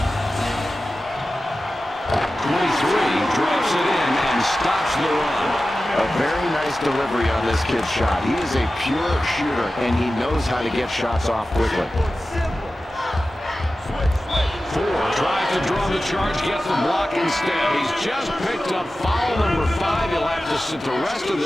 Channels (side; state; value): both; normal; correlation 0.94